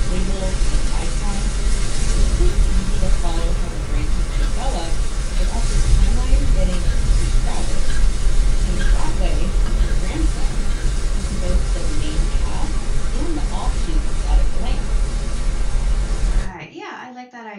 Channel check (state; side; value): identical; both; correlation 1.00